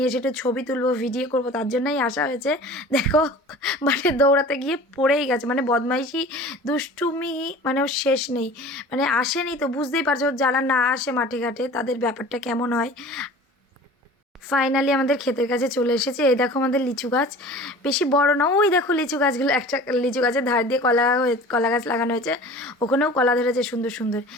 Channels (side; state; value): both; normal; correlation 0.42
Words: এসে একটু ছবি তুলবো, ভিডিও করবো, তার জন্যই আসা হয়েছে। দেখো মাঠে দৌড়াতে গিয়ে পড়েই গেছে, মানে বদমাইশি দুষ্টুমি মানে ওর শেষ নেই। মানে আসেনি তো বুঝতেই পারছো, যারা না আসে মাঠে ঘাটে তাদের ব্যাপারটা কেমন হয়। ফাইনালি আমাদের ক্ষেতের কাছে চলে এসেছে। এই দেখো আমাদের লিচু গাছ, বেশি বড় না, ওই দেখো লিচু গাছগুলো, একটা লিচু গাছের ধার দিয়ে কলা গাছ লাগানো হয়েছে, ওখানেও কলা ধরেছে সুন্দর সুন্দর।